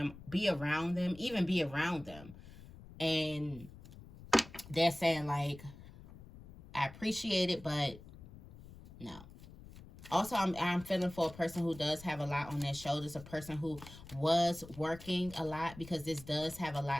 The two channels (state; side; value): noise; left; rumble, 17 dB below the sound